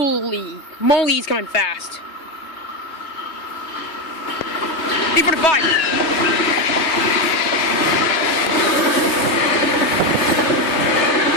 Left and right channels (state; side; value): late; right; 3.2 ms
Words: moly, he's coming fast. 345.